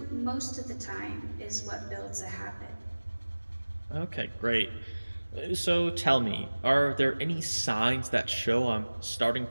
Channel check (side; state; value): both; inverted; correlation -1.00